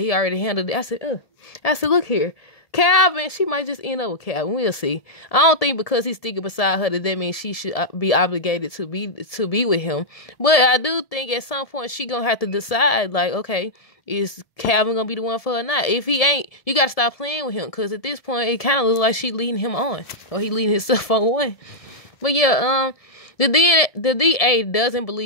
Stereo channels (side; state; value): right; late; 1.7 ms